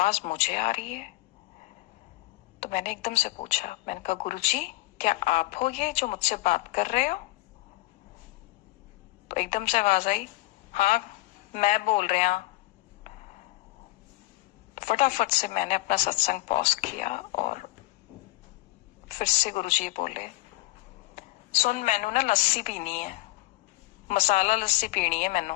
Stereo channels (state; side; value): quieter; right; 20.0 dB